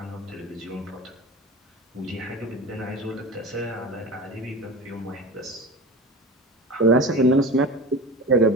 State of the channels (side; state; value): both; normal; correlation 0.31